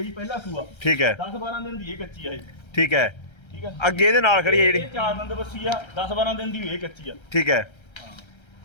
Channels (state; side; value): late; right; 1.3 ms